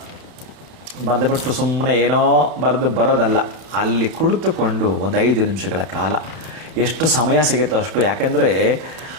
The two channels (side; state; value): left; late; 31 ms